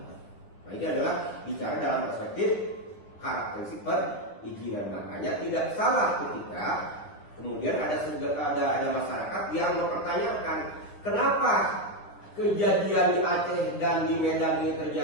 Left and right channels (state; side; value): late; right; 10 ms